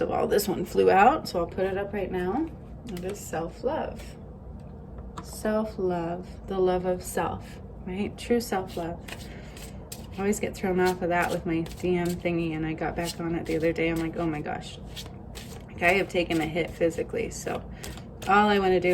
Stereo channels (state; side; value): identical; both; correlation 1.00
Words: of all, this one flew out, so I'll put it up right now. It is self-love. Self-love, the love of self, right? True self-love. I always get thrown off of that with my DM thingy, and I got back on it the other day. I'm like, oh my gosh. I have taken a hit physically, so all I want to